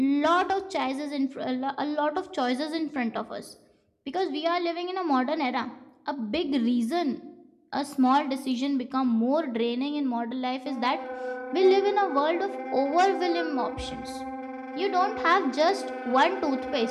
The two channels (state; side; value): identical; both; correlation 1.00